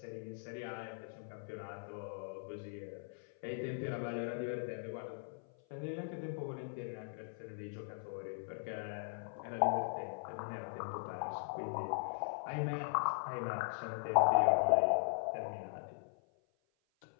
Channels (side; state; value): right; silent; 51 dB below the other